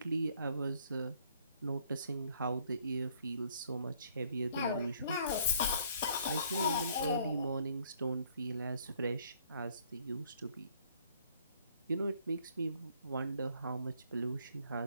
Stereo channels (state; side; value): inverted; both; correlation -0.63